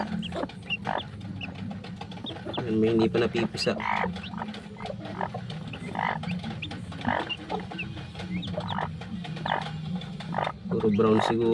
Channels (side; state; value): both; identical; correlation 1.00